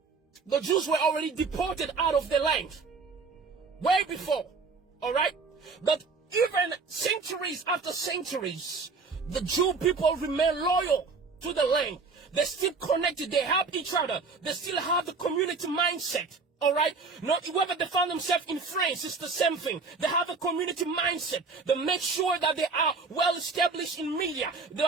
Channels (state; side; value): quieter; left; 4.4 dB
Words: the Jews were already deported out of the land. Way before, all right? But even centuries after centuries, the Jew people remain loyal to the land. They're still connected. They help each other. They still have the community mindset. All right? Not whether they found themselves in France, it's the same thing. They have a community mindset. They make sure that they are well established in media. They